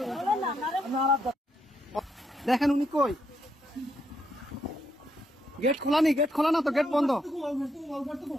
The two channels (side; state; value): both; normal; correlation 0.77